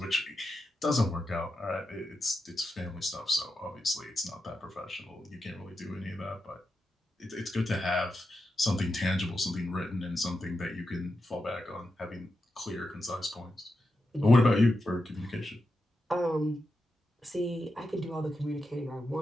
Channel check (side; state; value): both; normal; correlation 0.88